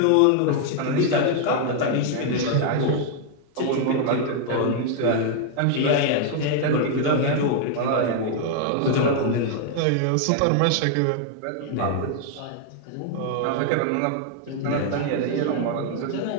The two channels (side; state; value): both; different; correlation 0.00